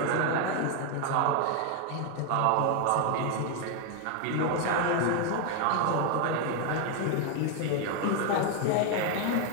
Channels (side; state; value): both; different; correlation 0.01